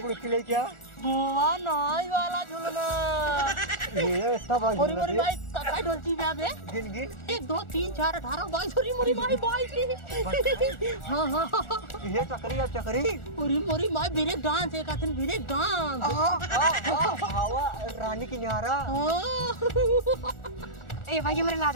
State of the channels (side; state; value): right; late; 1.4 ms